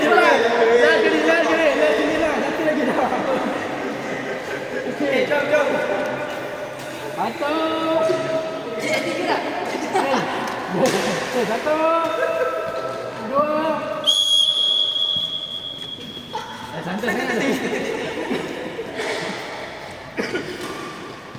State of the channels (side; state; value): both; identical; correlation 1.00